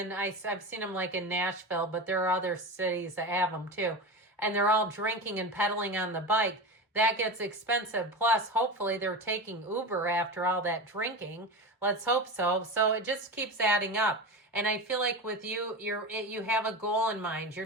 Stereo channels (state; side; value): normal; both; correlation 0.25